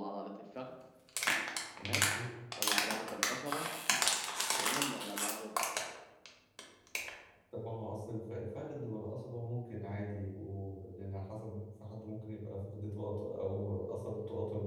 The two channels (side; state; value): both; identical; correlation 1.00